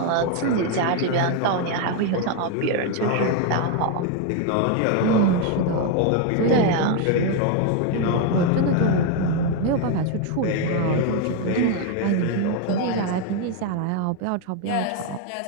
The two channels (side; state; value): both; different; correlation 0.01